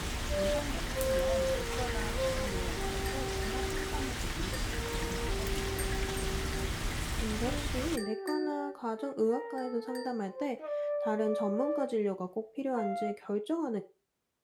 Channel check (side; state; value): both; identical; correlation 1.00